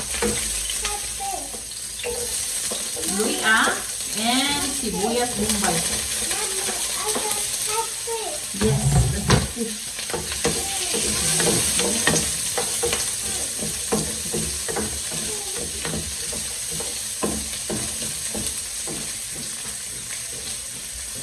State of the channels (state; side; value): identical; both; correlation 1.00